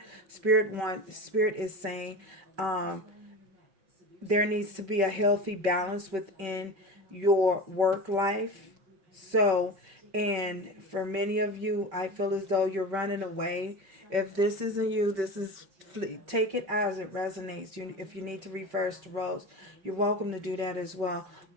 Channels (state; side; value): late; left; 5.2 ms